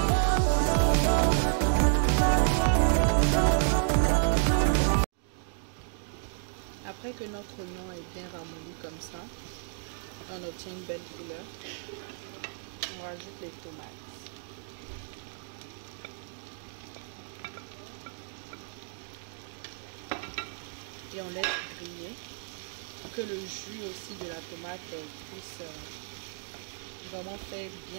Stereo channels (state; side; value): silent; left; digital silence